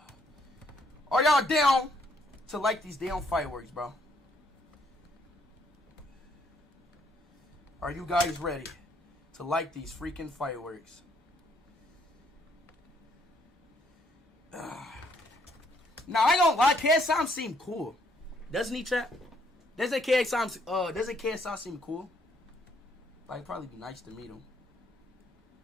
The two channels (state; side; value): normal; both; correlation 0.69